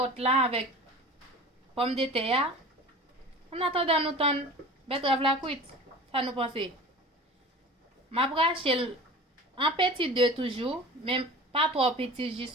là avec pomme de terre. On attend nous tendre betterave la cuite. Ça nous penser. M'a raché en petit 2 toujours, même pas trop petit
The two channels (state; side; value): normal; both; correlation 0.38